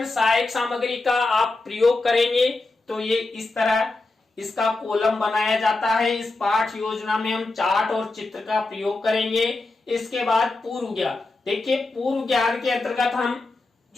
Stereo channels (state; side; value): quieter; right; 3.3 dB